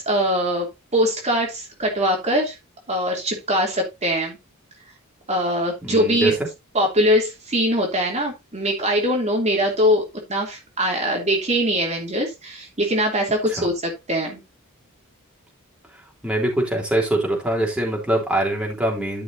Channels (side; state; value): both; normal; correlation 0.31